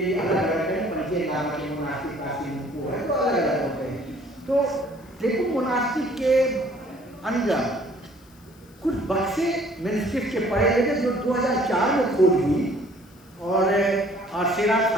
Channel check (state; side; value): noise; left; hiss, 28 dB below the sound